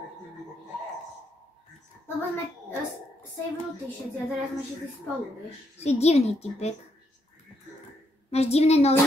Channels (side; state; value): both; normal; correlation 0.76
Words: Lebo sme savenutí všetci a teraz sme všetci spolu, vieš. Si divný typek. Máš divné